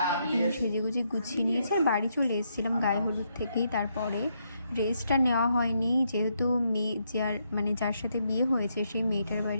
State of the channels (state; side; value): inverted; both; correlation -0.77